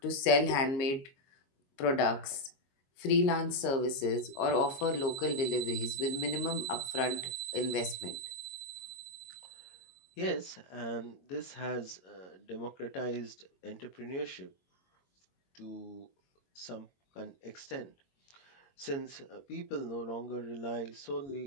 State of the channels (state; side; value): late; right; 22 ms